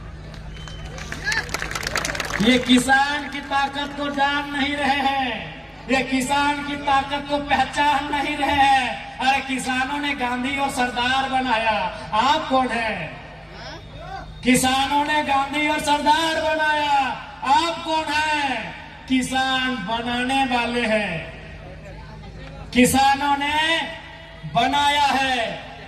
ये किसान की ताकत को जान नहीं रहे हैं, ये किसान की ताकत को पहचान नहीं रहे हैं। अरे किसानों ने गांधी और सरदार बनाया, आप कौन है? किसानों ने गांधी और सरदार बनाया, आप कौन है? किसान बनाने वाले हैं। किसानों ने बनाया है,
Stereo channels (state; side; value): identical; both; correlation 1.00